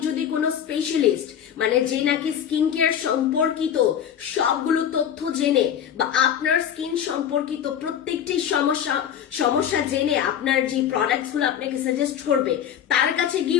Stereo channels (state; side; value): quieter; right; 9.3 dB